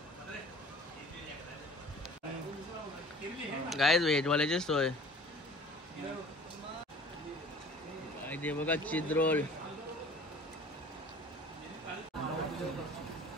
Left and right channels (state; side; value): normal; both; correlation 0.46